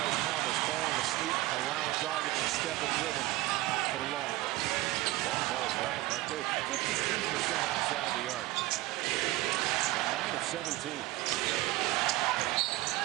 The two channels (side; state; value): left; quieter; 18.4 dB